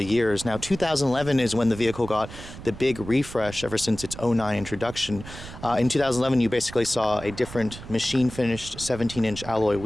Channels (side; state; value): right; noise; rumble, 13 dB below the sound